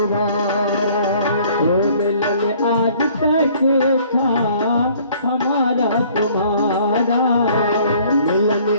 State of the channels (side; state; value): both; inverted; correlation -0.57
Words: वो मिलन आज तक था हमारा तुम्हारा, मिलन